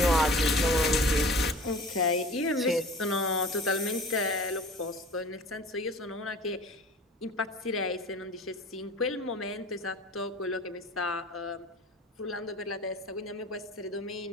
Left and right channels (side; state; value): both; normal; correlation 0.42